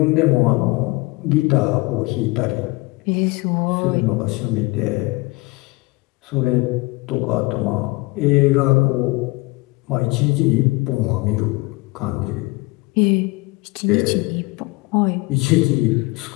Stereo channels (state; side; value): quieter; right; 23.8 dB